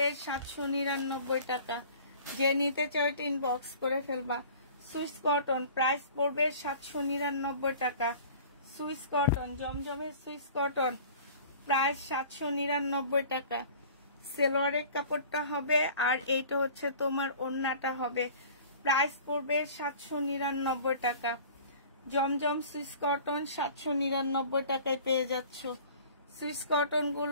799 টাকা। যে নিতে চাও এটা ইনবক্স করে ফেলবা। সুইস কটন, প্রাইস পড়বে 799 টাকা। সুইস কটন, জমজমের সুইস কটন, প্রাইস 799 টাকা। সালোয়ারের কাপড়টা হবে, আর এইটা হচ্ছে তোমার ওড়নাটা হবে। প্রাইস পড়বে 799 টাকা। জমজম সুইস কটন 799 টাকায় পেয়ে যাচ্ছ। সুইস কটন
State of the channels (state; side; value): inverted; both; correlation -0.45